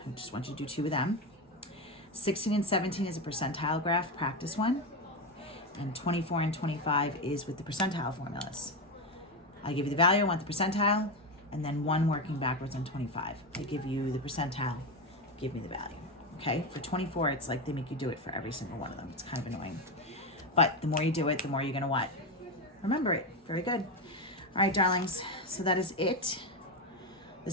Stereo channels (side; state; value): both; normal; correlation 0.14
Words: I just want you to do 2 of them. 16 and 17 is a percentile graph, practice one. And 24 and 25 is with the percentile formulas. I give you the value, I want the percentile, and then 1 working backwards on 25. I give you the percentile, give me the value. Okay, for 24, it's like they make you do it for every single one of them. It's kind of annoying. But the more you do it, the more you're gonna what? Remember it. Very good. All right, darlings, so that is it.